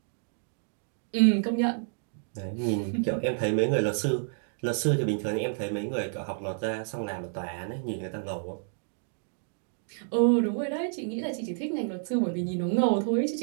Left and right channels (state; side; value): silent; left; digital silence